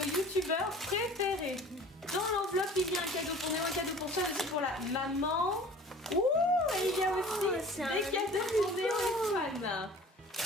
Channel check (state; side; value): normal; both; correlation 0.45